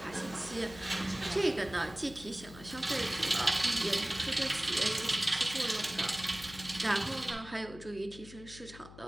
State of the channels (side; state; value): left; noise; hum, 17 dB below the sound